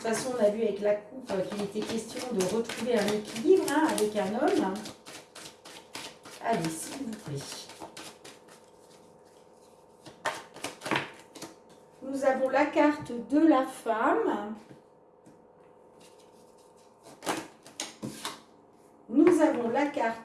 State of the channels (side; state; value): both; identical; correlation 1.00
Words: façon, on a vu avec la coupe qu'il était question de retrouver un équilibre, hein, avec un homme. Allez, s'il vous plaît. Nous avons la carte de la femme. Nous avons la